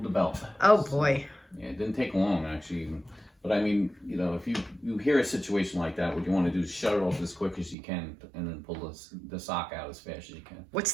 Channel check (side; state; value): left; drops out; at 7.8 s